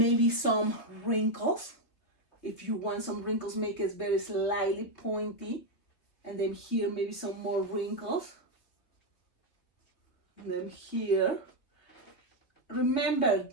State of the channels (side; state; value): right; late; 3.4 ms